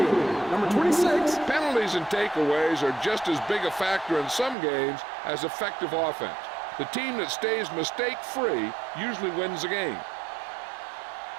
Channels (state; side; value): drops out; left; at 4.5 s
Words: number 26. Penalties and takeaways are just as big a factor in some games as effective offense. The team that stays mistake-free usually wins the game.